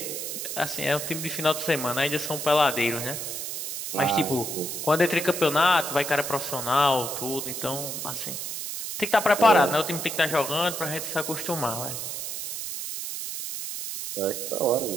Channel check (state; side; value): noise; right; hiss, 5 dB below the sound